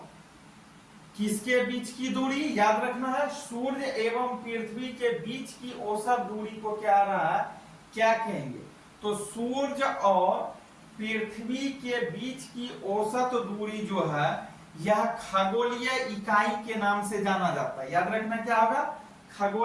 किसके बीच की दूरी, याद रखना है सूर्य एवं पृथ्वी के बीच की औसत दूरी को क्या रहा है, क्या कहेंगे? तो सूर्य और पृथ्वी के बीच की औसत दूरी जो है यह खगोलीय इकाई के नाम से जाना जाता है। याद रखना क्या होगा,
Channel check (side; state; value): both; identical; correlation 1.00